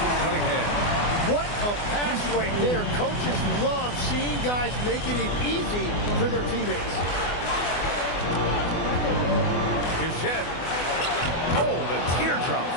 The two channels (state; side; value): late; right; 24 ms